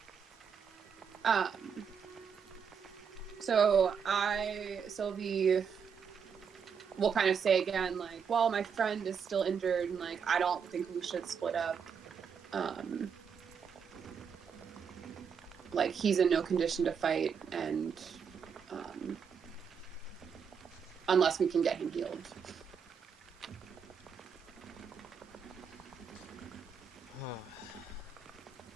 So Sylvie will kind of say again, like, well, my friend is still injured, and like, I don't think we should split up. Like, he's in no condition to fight, and unless we can get him healed.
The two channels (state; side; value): quieter; left; 6.7 dB